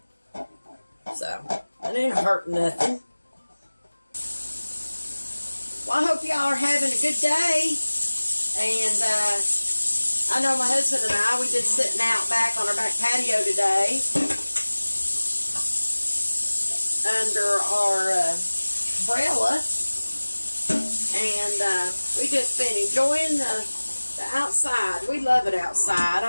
So, it ain't hurting nothing. Well, I hope y'all are having a good day. And, I know my husband and I, we've been sitting out back on our back patio today under our umbrella, and we just been enjoying the outside. We love it outside.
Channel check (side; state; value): both; inverted; correlation -1.00